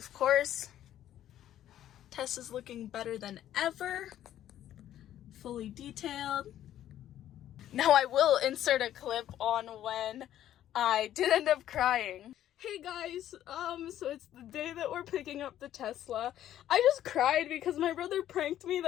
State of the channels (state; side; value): quieter; right; 11.9 dB